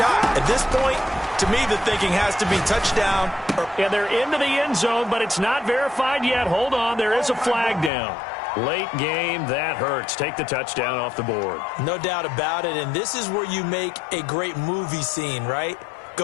At this point, to me, the thinking has to be touchdown. And they're into the end zone, but it's not verified yet. Hold on, there is a flag down. Late game, that hurts. Take the touchdown off the board. No doubt about it, and this is where you make a great movie scene, right?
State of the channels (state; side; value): drops out; right; at 7.9 s